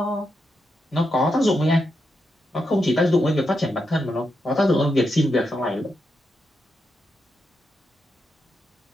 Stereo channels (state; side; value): normal; both; correlation 0.84